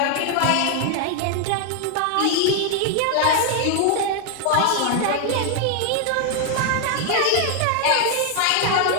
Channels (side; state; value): both; different; correlation 0.00